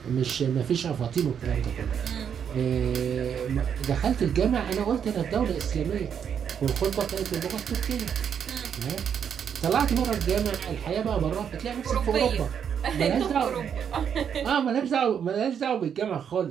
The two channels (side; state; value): left; quieter; 7.9 dB